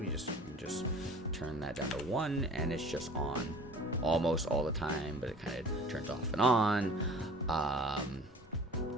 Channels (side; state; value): both; normal; correlation 0.45